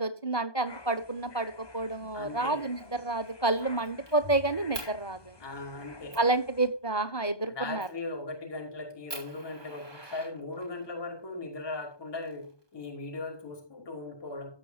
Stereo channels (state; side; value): late; right; 1.2 ms